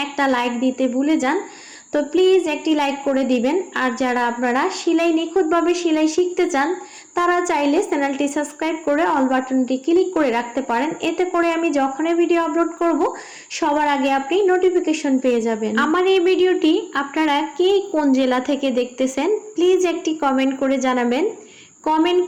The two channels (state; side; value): identical; both; correlation 1.00